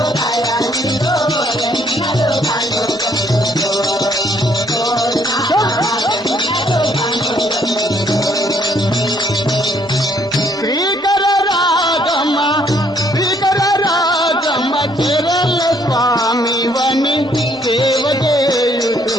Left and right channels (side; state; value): both; normal; correlation 0.66